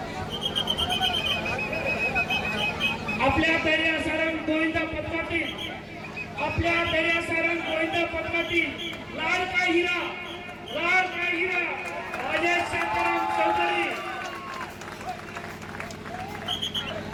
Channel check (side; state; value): both; identical; correlation 1.00